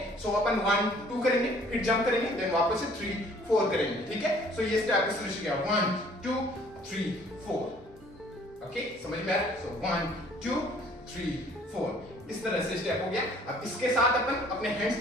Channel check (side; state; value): both; normal; correlation 0.56